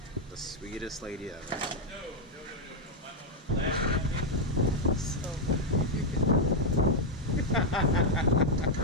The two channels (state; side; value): normal; both; correlation -0.01